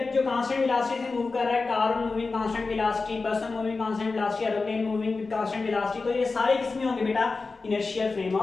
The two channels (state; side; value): quieter; right; 4.0 dB